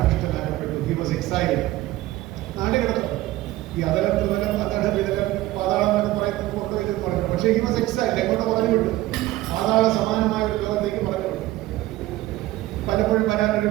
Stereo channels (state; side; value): quieter; left; 16.7 dB